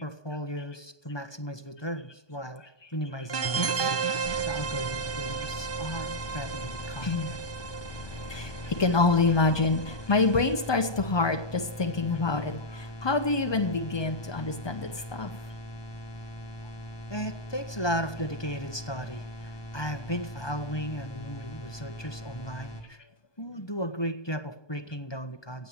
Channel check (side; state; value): right; late; 1.2 ms